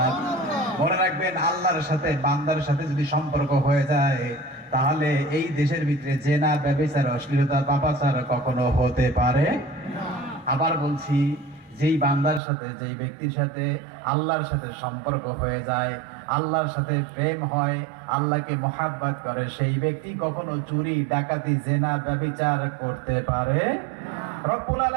মনে রাখবেন, আল্লাহর সাথে বান্দার সাথে যদি সম্পর্ক হয়ে যায়, তাহলে এই দেশের ভিতরে জেনা, ব্যভিচার, অশ্লীলতা, পাপাচার কখনো হতে পারে না। আবার বলছি, যেই বান্দার সাথে, যেই ব্যক্তির সাথে আল্লাহর সাথে সম্পর্ক হয়ে যায়, আল্লাহর সাথে প্রেম হয়, আল্লাহকে মহাব্বত করে, সেই ব্যক্তি কখনো চুরি, ডাকাতি, জেনা, ব্যভিচার করতে পারে না। রব্বুল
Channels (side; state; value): left; drops out; at 12.4 s